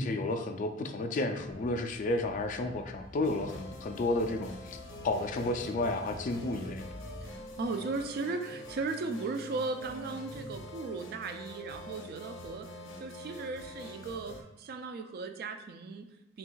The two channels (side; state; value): both; normal; correlation 0.33